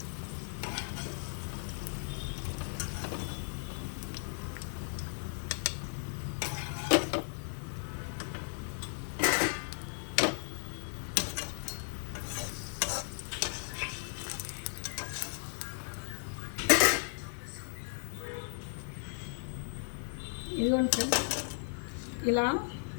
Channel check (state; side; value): silent; right; digital silence